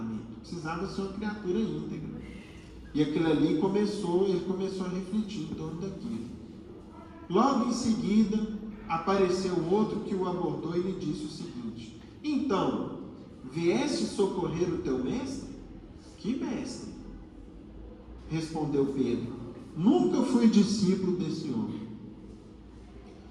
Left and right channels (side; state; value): both; identical; correlation 1.00